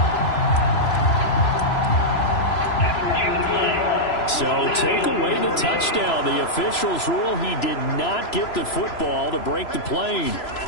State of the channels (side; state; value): right; late; 3.0 ms